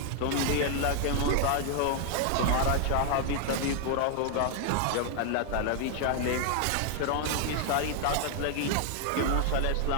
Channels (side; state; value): both; different; correlation 0.00